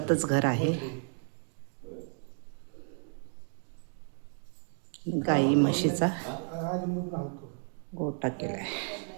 घर आहे. गाई म्हशीचा गोठा केलाय.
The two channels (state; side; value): silent; left; 56 dB below the other